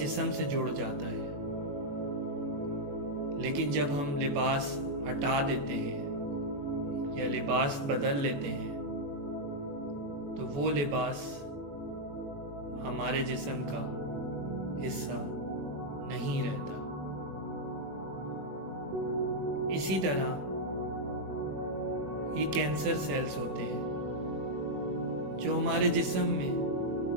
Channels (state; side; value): late; left; 21 ms